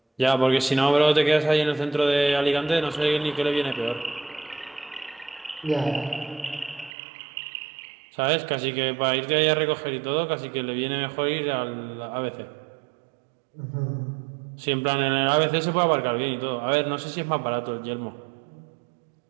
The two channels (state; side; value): drops out; left; at 6.9 s